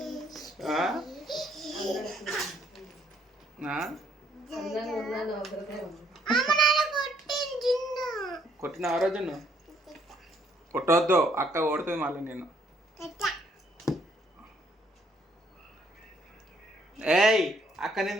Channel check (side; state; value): both; normal; correlation 0.67